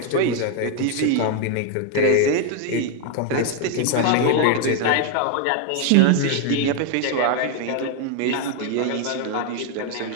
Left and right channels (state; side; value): different; both; correlation 0.01